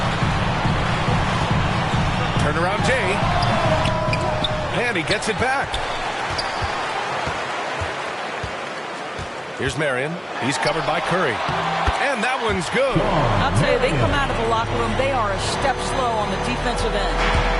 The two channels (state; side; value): identical; both; correlation 1.00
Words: Turnaround Jay. And he gets it back. Here's Marion. He's covered by Curry. And that one's good. I'll tell you, they come out of the locker room, they are a step slow on the defensive end.